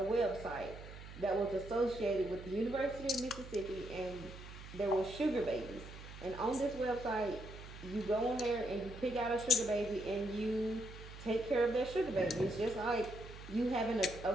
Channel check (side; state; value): right; noise; hum, 14 dB below the sound